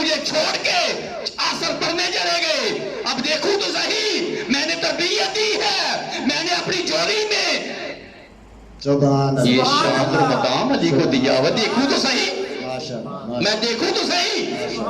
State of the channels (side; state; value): both; identical; correlation 1.00